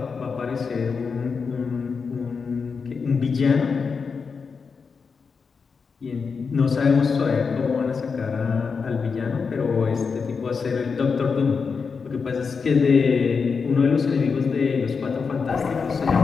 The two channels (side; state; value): right; quieter; 5.3 dB